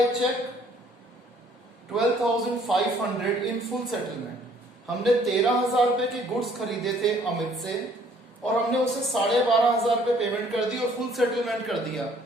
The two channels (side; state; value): both; normal; correlation 0.60